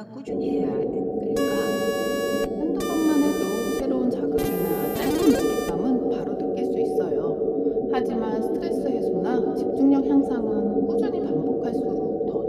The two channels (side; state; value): both; identical; correlation 1.00